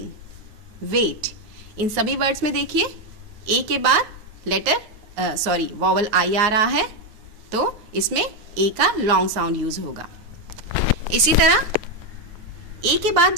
wait, इन सभी वर्ड्स में देखिए ए के बाद वॉवल आई आ रहा है, तो इसमें ए का लॉन्ग साउंड यूज होगा। इसी तरह ए के बाद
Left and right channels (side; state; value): left; late; 9.4 ms